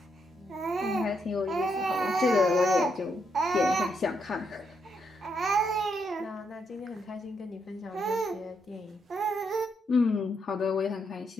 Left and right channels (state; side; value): normal; both; correlation 0.78